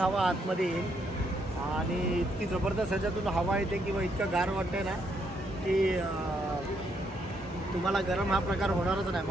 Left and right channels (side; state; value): both; normal; correlation 0.75